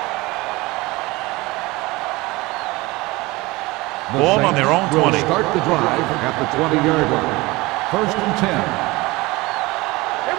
Ball on their own 20. Start the drive at the 20-yard line. 1st and 10.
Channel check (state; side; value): quieter; left; 21.9 dB